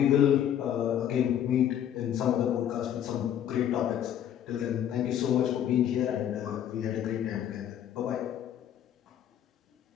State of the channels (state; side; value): quieter; right; 10.2 dB